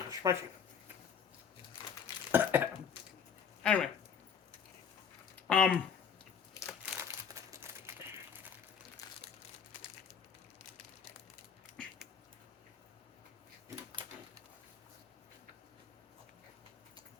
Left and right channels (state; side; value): quieter; right; 7.1 dB